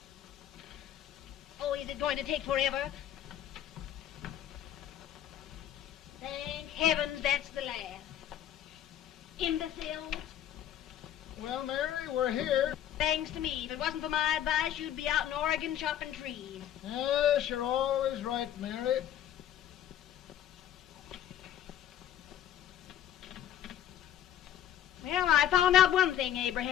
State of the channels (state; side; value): quieter; right; 10.9 dB